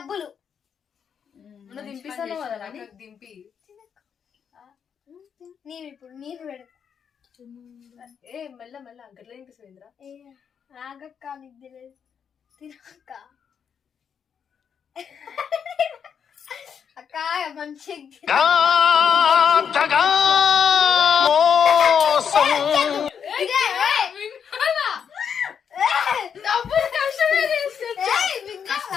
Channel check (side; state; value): right; quieter; 7.4 dB